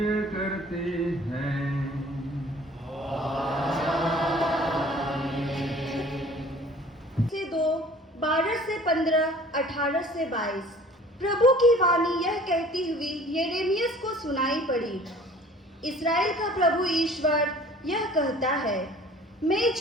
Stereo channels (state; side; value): normal; both; correlation 0.49